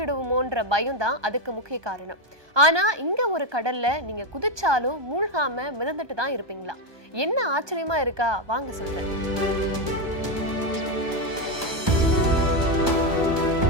பயம் தான் அதுக்கு முக்கிய காரணம். ஆனா இங்க ஒரு கடல்ல நீங்க குதிச்சாலும் மூழ்காம மிதந்துட்டு தான் இருப்பீங்களா? என்ன ஆச்சரியமா இருக்கா? வாங்க சொல்றேன்.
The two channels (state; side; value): late; left; 1.2 ms